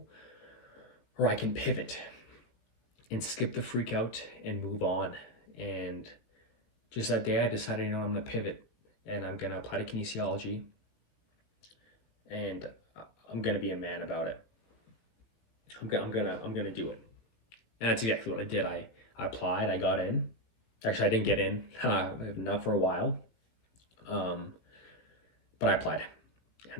or I can pivot and skip the freak out and move on. And just that day I decided, I'm gonna pivot and I'm gonna apply to kinesiology, and I'm gonna be a man about it. I'm gonna do it. And that's exactly what I did. I applied, I got in. Actually, I didn't get in, not for a while. But I applied,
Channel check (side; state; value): right; late; 18 ms